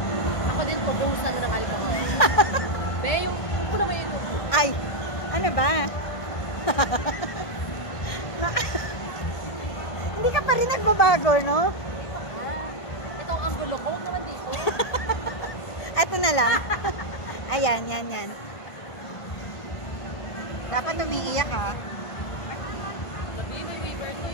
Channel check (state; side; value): late; right; 1.5 ms